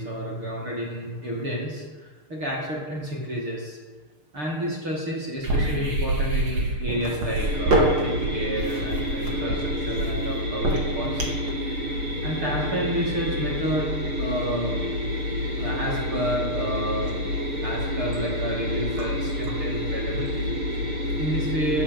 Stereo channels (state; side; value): late; left; 6.6 ms